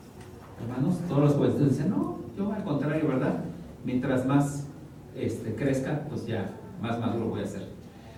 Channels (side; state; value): both; identical; correlation 1.00